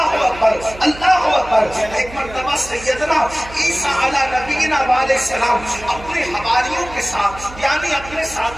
अकबर, अल्लाह अकबर। एक मर्तबा सैयदना ईसा अला नबीना अलैहिस्सलाम अपने हवारियों के साथ यानी अपने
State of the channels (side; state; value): right; noise; hum, 16 dB below the sound